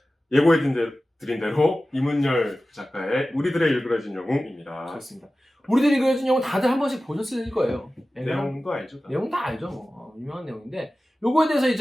예고해드린 대로 이문열 작가의 우리들의 일그러진 영웅입니다. 그렇습니다. 우리들이 그려진 영웅 다들 한 번씩 보셨을 거예요. 내용도 알죠? 내용 다 알죠. 뭐. 유명한 내용인데 요거에 대해서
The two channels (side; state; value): both; normal; correlation 0.95